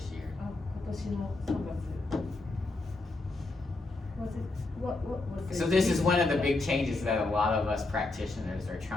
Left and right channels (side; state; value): right; quieter; 3.2 dB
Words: year. あ今年の3月。Was it what was it? So this is one of the big changes that a lot of us practitioners are